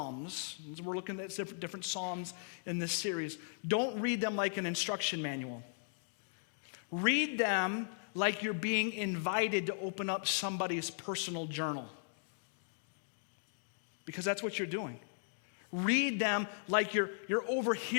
we're looking at different Psalms in this series, don't read them like an instruction manual. Read them like you're being invited to open up somebody's personal journal. Because that's what you're doing. Read them like you're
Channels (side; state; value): right; silent; digital silence